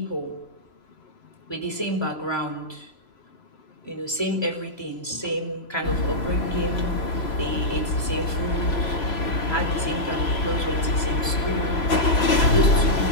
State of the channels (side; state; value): right; late; 3.0 ms